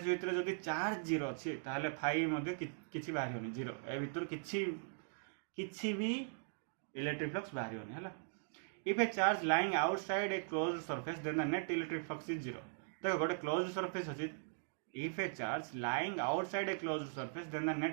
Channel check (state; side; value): silent; left; digital silence